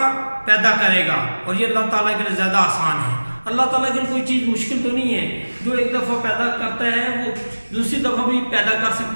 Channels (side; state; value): both; inverted; correlation -1.00